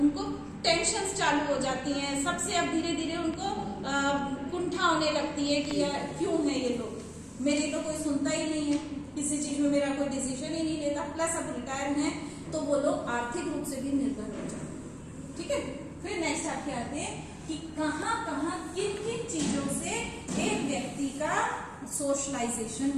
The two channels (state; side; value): identical; both; correlation 1.00